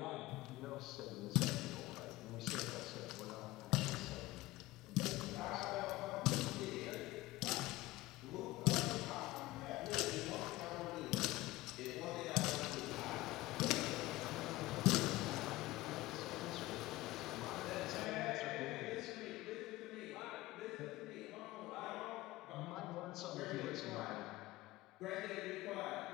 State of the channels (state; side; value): quieter; right; 18.6 dB